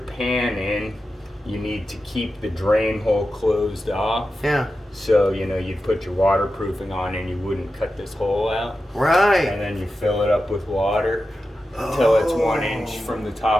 in, you need to keep the drain hole closed off. Yeah. So, you'd put your waterproofing on and you wouldn't cut this hole out. Right. And then you fill it up with water until it's 1 inch from the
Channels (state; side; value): normal; both; correlation 0.91